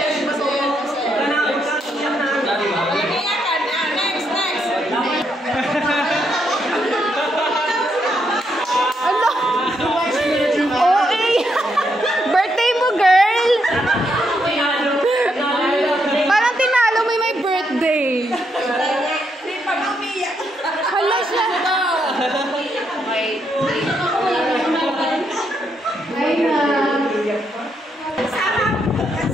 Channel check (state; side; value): normal; both; correlation 0.78